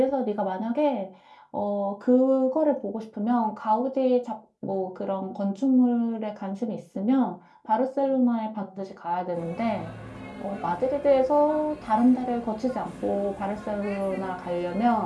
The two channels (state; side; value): identical; both; correlation 1.00